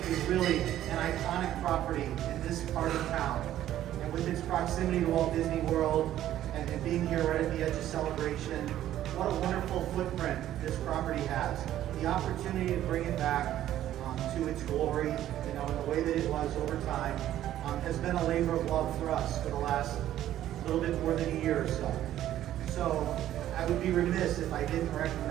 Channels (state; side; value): quieter; left; 12.5 dB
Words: is really an iconic property in this part of town, and with its proximity to Walt Disney World, and being here right at the edge of Celebration, what a wonderful footprint this property has. The opportunity to bring it back to its glory, in the way that it was over time, has been a labor of love for us for the last little bit more than a year or so. So I would be remiss if I didn't